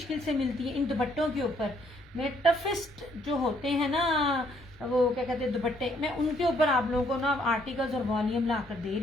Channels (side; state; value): both; normal; correlation 0.67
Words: से मिलती है इन दुपट्टों के ऊपर। मेरे टफेस्ट जो होते हैं ना, वो क्या कहते हैं दुपट्टे, मैं उनके ऊपर आप लोगों को ना आर्टिकल्स और वॉल्यूम ला कर दे